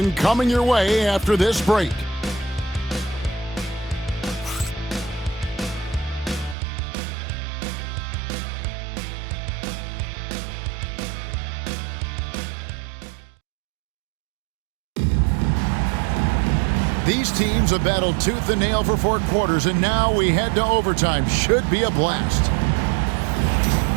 coming your way after this break. These teams have battled tooth and nail for 4 quarters, and now we head to overtime. Should be a blast.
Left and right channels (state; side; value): drops out; left; at 6.6 s